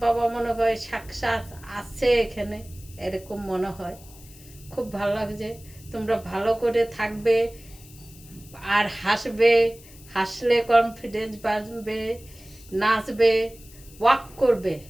বাবা মনে হয় সাক্ষাৎ আছে এখানে, এরকম মনে হয়। খুব ভালো লাগছে। তোমরা ভালো করে থাকবে আর হাসবে, হাসলে কনফিডেন্স বাড়বে, নাচবে, ওয়াক করবে,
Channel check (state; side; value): noise; left; hiss, 22 dB below the sound